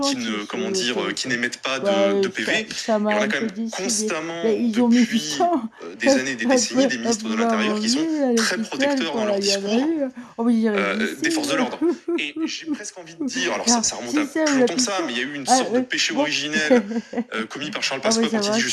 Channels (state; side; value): identical; both; correlation 1.00